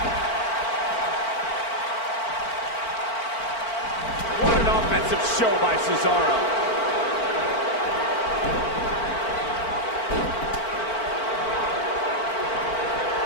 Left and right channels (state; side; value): late; right; 4.4 ms